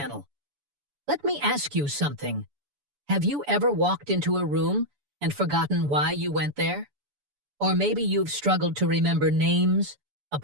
Let me ask you something. Have you ever walked into a room and forgotten why you went there? Or maybe you've struggled to remember names,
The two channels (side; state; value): left; late; 7.0 ms